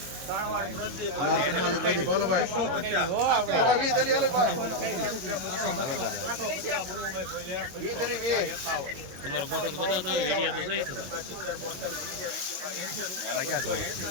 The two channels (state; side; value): late; left; 22 ms